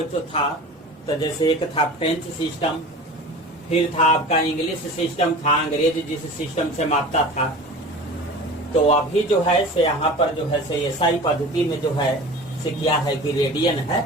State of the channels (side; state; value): both; normal; correlation 0.37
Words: जो था, तो जैसे एक था फ्रेंच सिस्टम, फिर था आपका इंग्लिश सिस्टम था, अंग्रेज जिस सिस्टम से मापता था। तो अभी जो है से यहाँ पर जो है से एसआई पद्धति में जो है से क्या है कि रेडियन